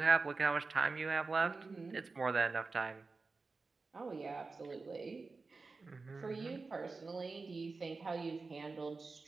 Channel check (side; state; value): left; quieter; 4.0 dB